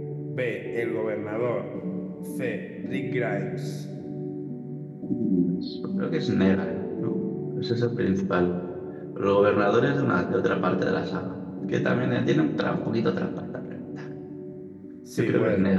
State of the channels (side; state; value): both; identical; correlation 1.00